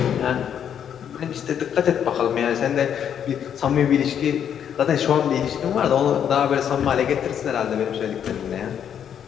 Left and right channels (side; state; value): right; quieter; 8.8 dB